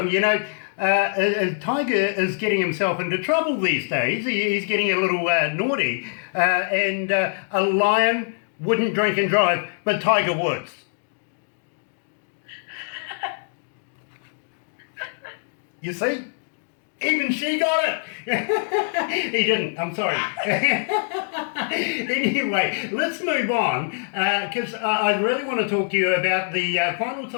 you know, Tiger is getting himself into trouble these days. He's getting a little naughty, and a lion wouldn't drink and drive, but Tiger Woods. You see? Even she got it. He didn't. I'm sorry. Anyway, let's move on because I really want to talk to you about the final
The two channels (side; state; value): right; silent; digital silence